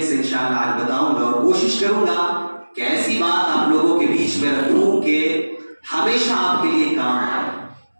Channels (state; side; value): inverted; both; correlation -1.00